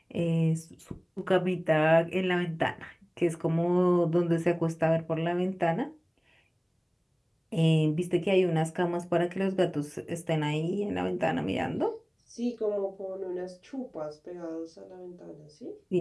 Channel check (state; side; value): identical; both; correlation 1.00